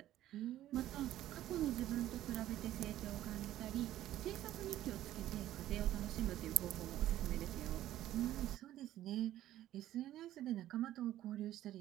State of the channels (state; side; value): quieter; left; 13.5 dB